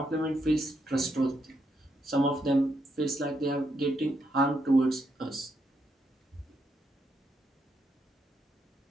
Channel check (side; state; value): both; normal; correlation 0.79